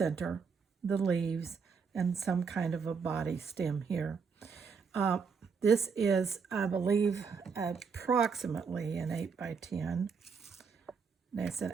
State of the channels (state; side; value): quieter; left; 5.7 dB